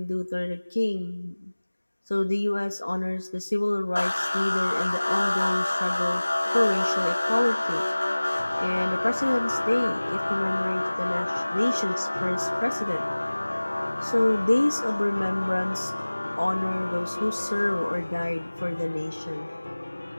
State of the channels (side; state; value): both; inverted; correlation -1.00